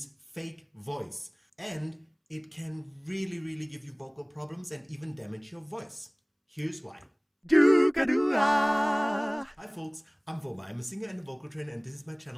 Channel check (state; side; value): identical; both; correlation 1.00